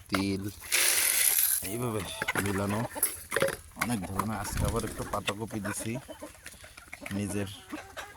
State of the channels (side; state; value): both; identical; correlation 1.00